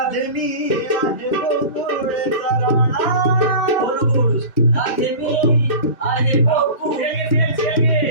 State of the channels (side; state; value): both; inverted; correlation -0.34